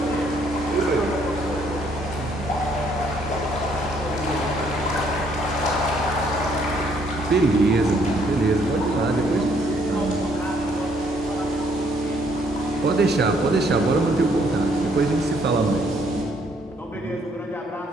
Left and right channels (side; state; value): both; normal; correlation 0.67